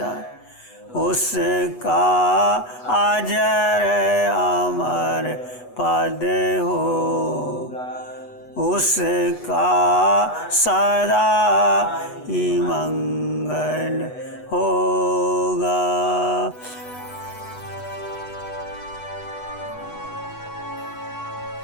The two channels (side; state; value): right; late; 8.1 ms